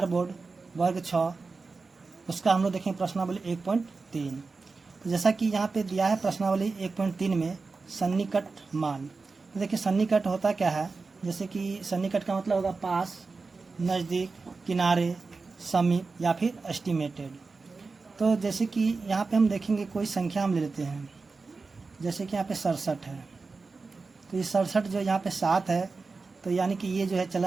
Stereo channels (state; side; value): quieter; left; 4.2 dB